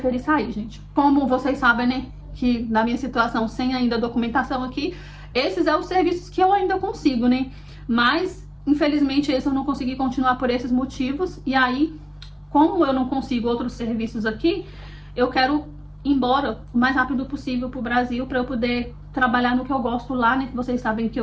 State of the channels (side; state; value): both; identical; correlation 1.00